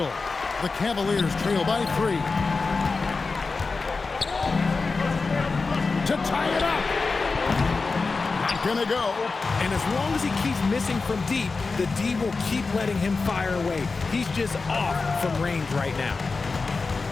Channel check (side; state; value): right; quieter; 4.2 dB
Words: The Cavaliers trail by 3. To tie it up. Not gonna go. And as long as he keeps missing from deep, the D will keep letting him fire away. He's just off from range right now.